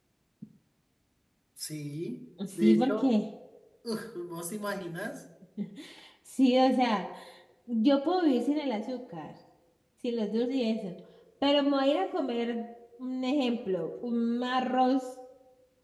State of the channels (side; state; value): both; identical; correlation 1.00